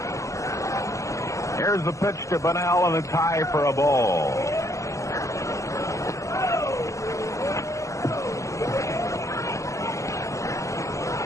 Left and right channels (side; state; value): right; late; 0.15 ms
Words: Here's the pitch to Bonnell, and a tie for a ball.